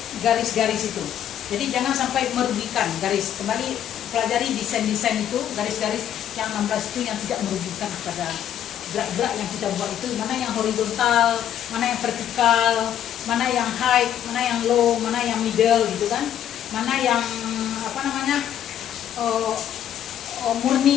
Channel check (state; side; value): quieter; right; 10.4 dB